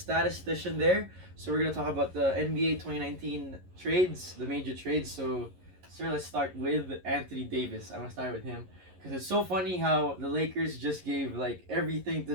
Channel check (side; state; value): left; late; 11 ms